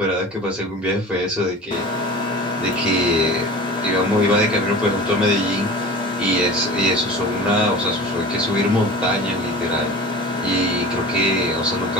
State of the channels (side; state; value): both; normal; correlation 0.37